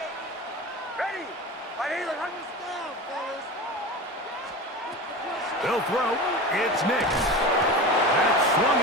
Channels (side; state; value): both; normal; correlation 0.29